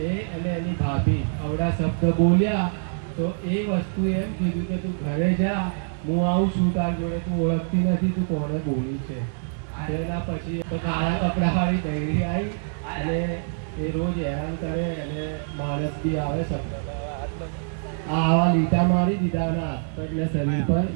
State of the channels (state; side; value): silent; left; digital silence